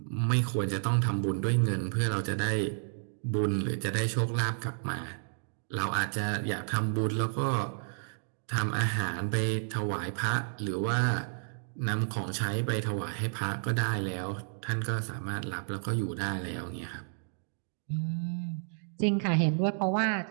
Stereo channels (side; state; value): left; silent; digital silence